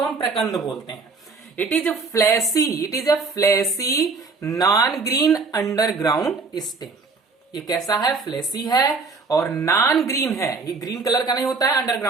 हम प्रकंद बोलते हैं। It is a fleshy non green underground stem. ये कैसा है, फ्लैसी है और नॉन ग्रीन है, ये ग्रीन कलर का नहीं होता है,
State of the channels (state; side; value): quieter; left; 4.2 dB